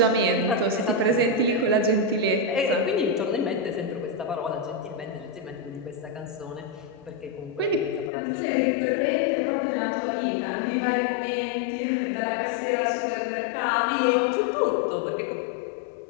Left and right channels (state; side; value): drops out; right; at 8.1 s